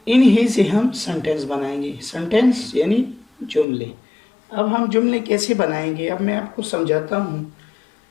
इन्हीं से हम सेंटेंस बनाएंगे। सेंटेंस यानी जुमले। अब हम जुमले कैसे बनाएंगे, अब मैं आपको समझाता हूँ।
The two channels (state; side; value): drops out; right; at 3.7 s